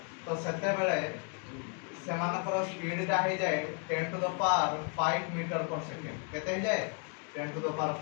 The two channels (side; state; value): right; quieter; 37.6 dB